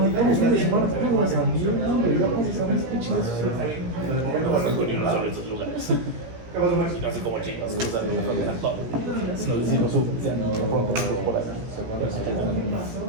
de semana, fuimos a San Diego, ya pasamos, qué chido eso. No conozco ni uno solo de estos lugares. ¿Qué pasó, Max? Y no sé cómo chicos cruzan la frontera todo. Si nos decimos ya no, pronto nosotros por ahí.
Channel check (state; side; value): late; left; 17 ms